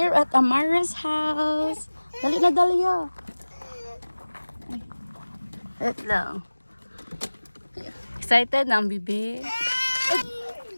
at Amara's house. Dali na, Dahlia. Wait lang. Excited na ang bibi.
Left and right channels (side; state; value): both; inverted; correlation -1.00